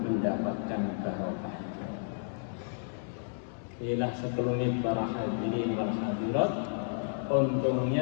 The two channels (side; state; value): right; silent; digital silence